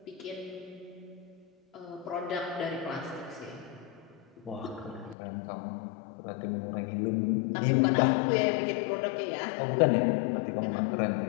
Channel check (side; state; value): right; drops out; at 5.2 s